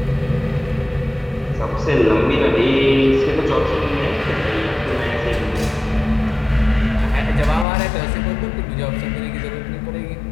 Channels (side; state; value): right; drops out; at 7.7 s